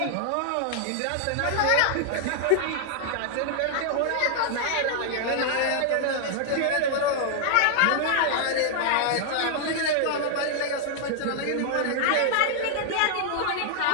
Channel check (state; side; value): different; both; correlation -0.01